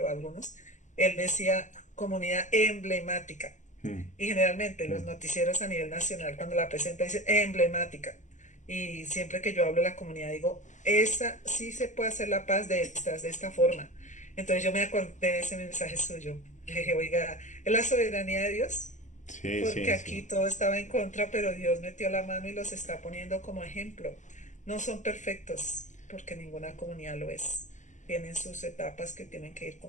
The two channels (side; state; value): right; late; 0.35 ms